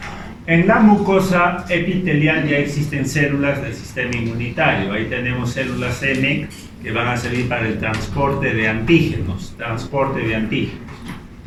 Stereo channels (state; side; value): identical; both; correlation 1.00